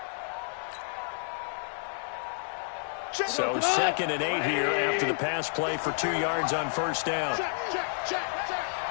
So 2nd and 8 here after the pass play for 2 yards on first down. Check.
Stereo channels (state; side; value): silent; right; digital silence